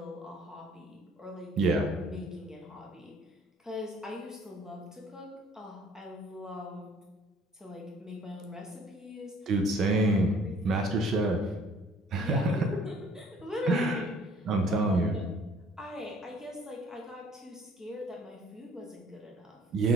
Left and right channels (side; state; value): both; normal; correlation 0.56